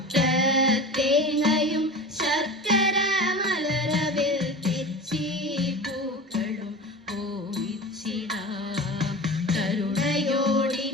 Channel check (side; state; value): both; normal; correlation 0.32